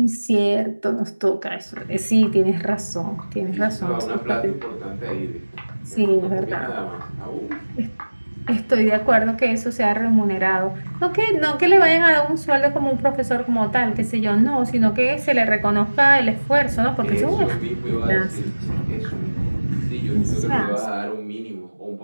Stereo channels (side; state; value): both; inverted; correlation -1.00